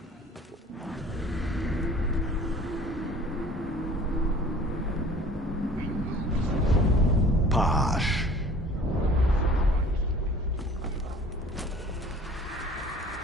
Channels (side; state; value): both; normal; correlation 0.49